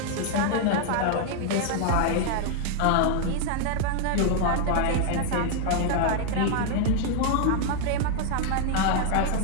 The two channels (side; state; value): both; different; correlation 0.00